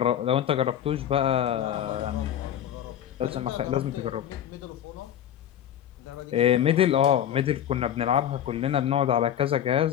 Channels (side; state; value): right; quieter; 10.5 dB